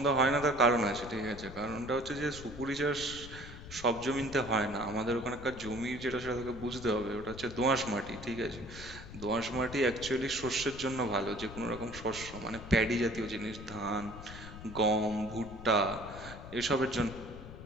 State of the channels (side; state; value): left; noise; rumble, 13 dB below the sound